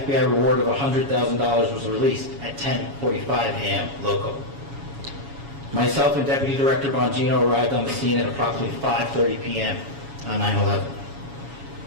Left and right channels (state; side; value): late; left; 7.2 ms